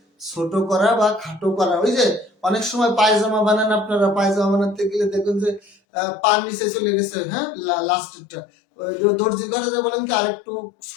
ছোট করা বা খাটো করা। ওই যে অনেক সময় পায়জামা বানান আপনারা, পায়জামা বানাতে গেলে দেখবেন যে পার নিচে চলে গেছে, হ্যাঁ লাস্টেরটা, দর্জি ঘরে যে বলেন কি আরেকটু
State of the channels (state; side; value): drops out; right; at 5.8 s